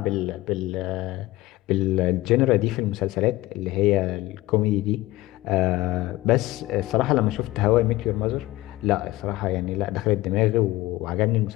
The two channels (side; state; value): right; quieter; 18.1 dB